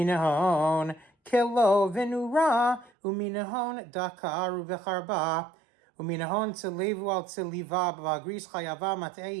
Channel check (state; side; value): drops out; left; at 2.9 s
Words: ההון כלו ונורה, ומן ההון דקר וחרבה, ומן ההון צלבו על צליבה, והגריס חייבה